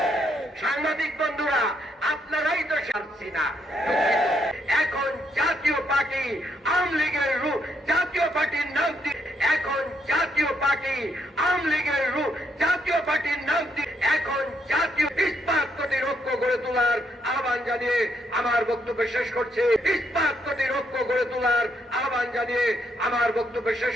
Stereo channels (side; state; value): both; normal; correlation 0.75